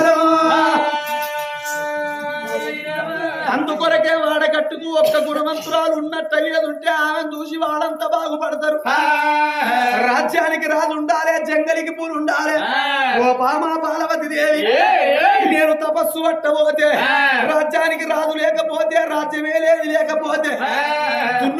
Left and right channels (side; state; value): both; identical; correlation 1.00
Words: అందుకొరకే వాడకట్టుకు ఒక్క గుణవంతురాలు ఉన్నట్టు అయ్యేదుంటే ఆమెను చూసి వాళ్ళంతా బాగుపడతారు రాజ్యానికి రాజు ఉండాలి జంగలికి పూలు ఉండాలి ఓ బామా బాలవతి దేవి నేను తపస్సు పట్టబోతే రాజ్యానికి రాజు లేకపోతే రాజ్యమే లేదు లేకపోతే